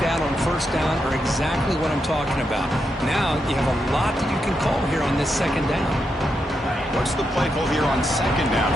on first down are exactly what I'm talking about. Now you have a lot that you can call here on this second down. What's the play call here on second down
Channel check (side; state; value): both; normal; correlation 0.84